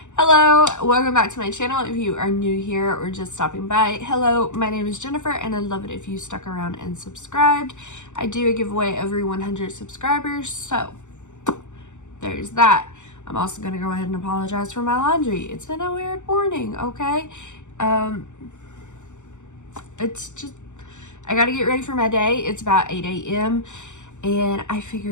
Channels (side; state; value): right; late; 0.84 ms